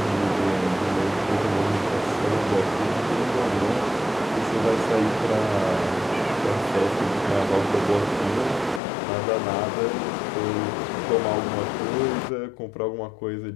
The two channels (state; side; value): drops out; right; at 8.8 s